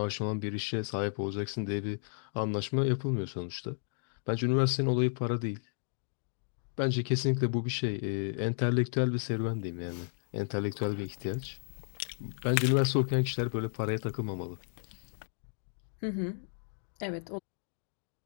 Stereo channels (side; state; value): right; silent; digital silence